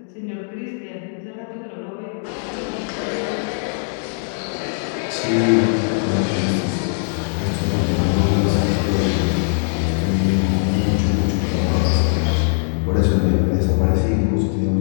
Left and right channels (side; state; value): right; silent; digital silence